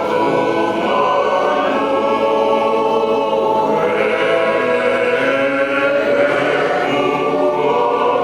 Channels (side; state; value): right; noise; hum, 28 dB below the sound